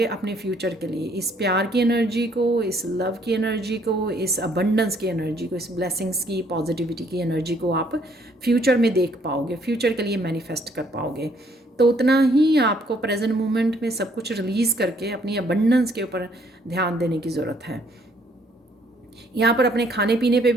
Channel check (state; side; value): normal; both; correlation 0.65